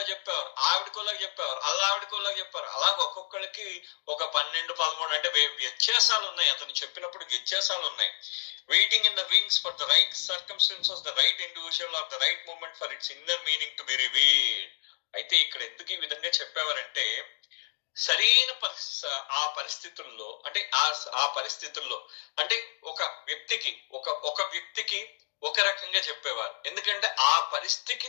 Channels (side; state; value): right; silent; 56 dB below the other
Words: చెప్పేవారు, ఆవిడకోలా చెప్పేవారు, ఆవిడకోలా చెప్పారు. అలా ఒక్కొక్కరికి ఒక 12-13 అంటే వ్యత్యాసాలు ఉన్నాయి. అతను చెప్పినప్పుడు వ్యత్యాసాలు ఉన్నాయి. Waiting in the wings for the right circumstances, the right individual or the right moment for its inner meaning to be revealed. అయితే ఇక్కడ ఎందుకు ఈ విధంగా చెప్పేవారంటే సరైన ఆ పరిస్థితుల్లో అంటే ఆ పరిస్థితుల్లో అంటే ఒక వ్యక్తికి ఒక రకంగా చెప్పేవారు. ఎందుకంటే ఆ